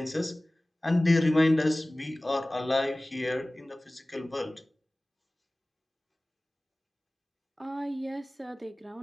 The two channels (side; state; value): both; normal; correlation 0.98